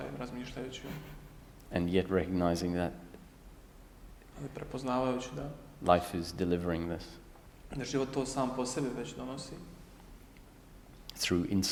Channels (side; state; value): both; identical; correlation 1.00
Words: razmišljajući um. And yet recognizing that Ali prepoznavajući da life is delivering this da život to sam po sebi već donosi through